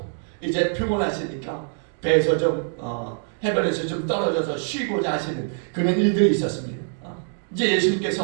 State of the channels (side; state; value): left; silent; digital silence